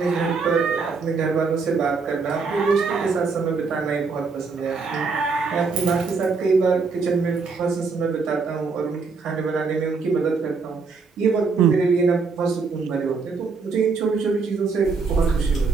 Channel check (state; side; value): quieter; left; 4.7 dB